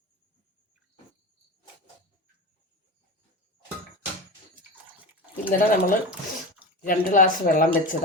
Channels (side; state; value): both; normal; correlation 0.25